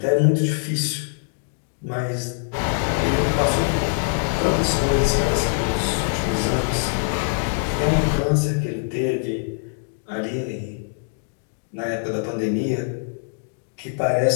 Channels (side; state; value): right; silent; digital silence